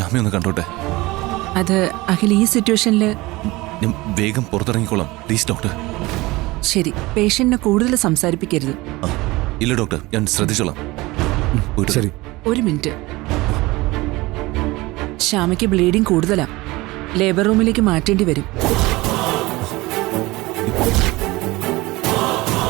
കണ്ടോട്ടെ. അത് അഖിൽ ഈ സിറ്റുവേഷനിൽ ഞാൻ വേഗം പുറത്തിറങ്ങിക്കോളാം പ്ലീസ് ഡോക്ടർ. ശരി, പേഷ്യന്റിനെ കൂടുതൽ സംസാരിപ്പിക്കരുത്. ഇല്ല ഡോക്ടർ, ഞാൻ ശ്രദ്ധിച്ചോളാം. ശരി. ഒരു മിനിറ്റ്. ശ്യാമയ്ക്ക് ബ്ലീഡിംഗ് കൂടുതലാ. ലേബർ റൂമിലേക്ക് മാറ്റേണ്ടി വരും.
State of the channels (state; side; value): quieter; left; 21.1 dB